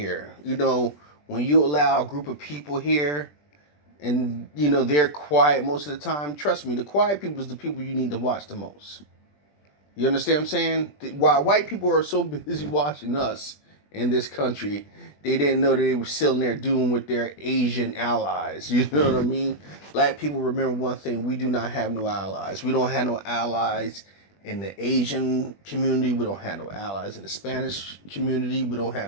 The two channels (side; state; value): right; late; 20 ms